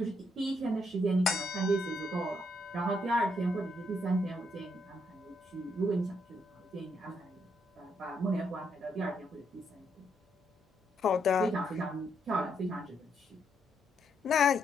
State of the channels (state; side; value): normal; both; correlation 0.76